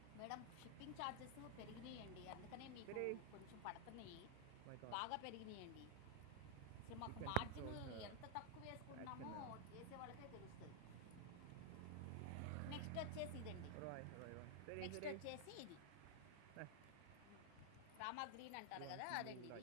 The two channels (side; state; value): both; different; correlation -0.01